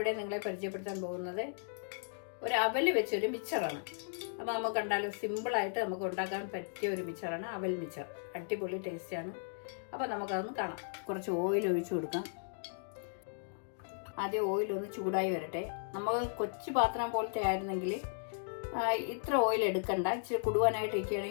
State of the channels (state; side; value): silent; right; digital silence